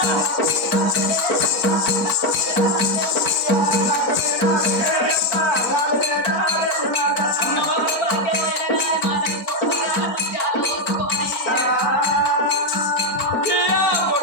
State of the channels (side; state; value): right; late; 4.4 ms